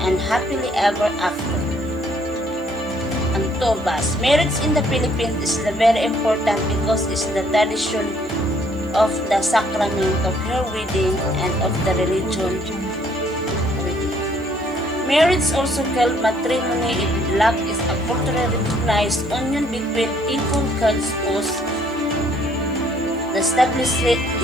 and happily ever after. Antobas. Marriage in the Philippines is very important because it's the tradition of the sacrament of her wedding and of the religion wedding. Marriage, also called matrimony in Lac, is a culturally recognized union between equal spouses. The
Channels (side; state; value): right; noise; hiss, 28 dB below the sound